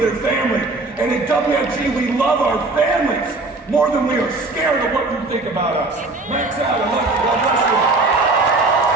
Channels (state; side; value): quieter; left; 3.3 dB